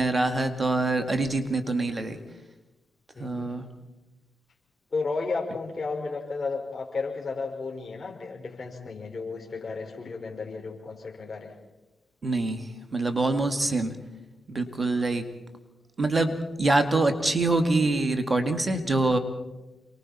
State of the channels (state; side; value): normal; both; correlation 0.85